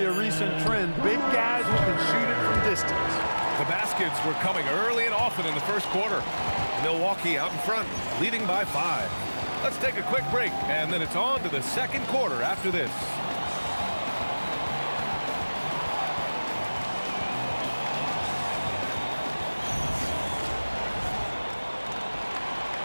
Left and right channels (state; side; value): inverted; both; correlation -1.00